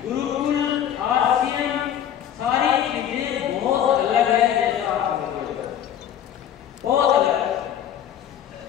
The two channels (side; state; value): right; quieter; 10.1 dB